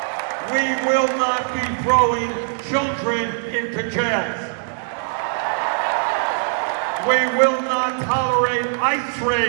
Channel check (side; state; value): left; silent; digital silence